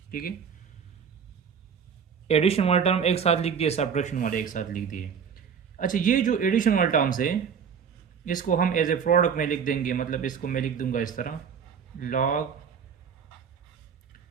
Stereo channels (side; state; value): left; quieter; 6.9 dB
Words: ठीक है, एडिशन वाला टर्म एक साथ लिख दिए, सब्ट्रैक्शन वाले एक साथ लिख दिए। अच्छा, ये जो एडिशन वाला टर्म्स है इसको हम एज ए प्रोडक्ट में लिख देंगे, मतलब इसको मैं लिख दूंगा इस तरह, log